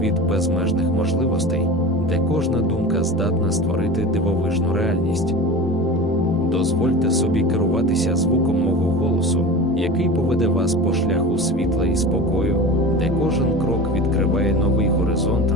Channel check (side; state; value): both; normal; correlation 0.32